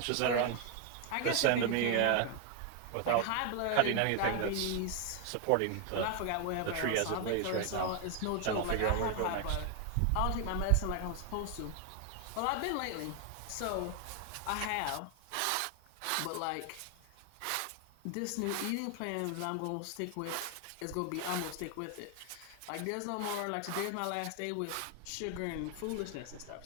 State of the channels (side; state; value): both; different; correlation 0.01